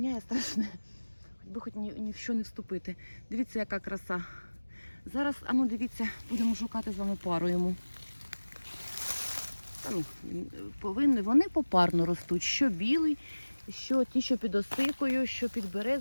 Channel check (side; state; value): both; inverted; correlation -1.00